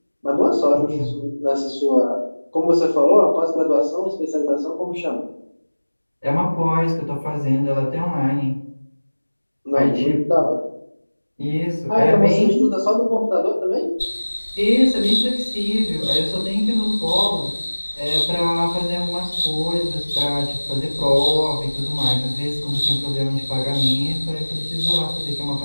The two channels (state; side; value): inverted; both; correlation -1.00